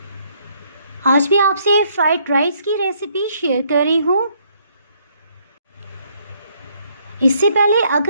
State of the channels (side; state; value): both; inverted; correlation -0.68